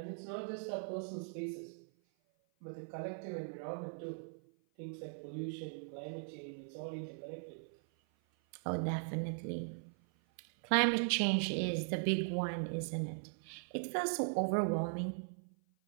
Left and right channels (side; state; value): left; silent; 51 dB below the other